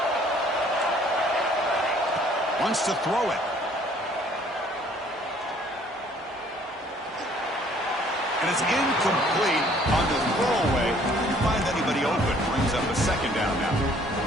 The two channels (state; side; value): normal; both; correlation 0.59